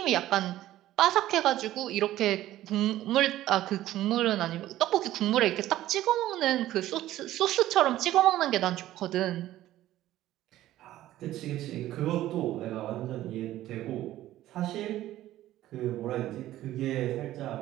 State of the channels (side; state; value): left; quieter; 14.3 dB